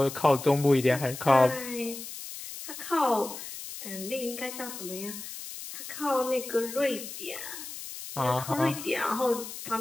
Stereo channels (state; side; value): noise; left; hiss, 10 dB below the sound